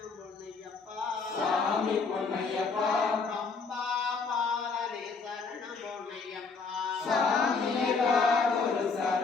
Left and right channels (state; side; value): quieter; right; 4.6 dB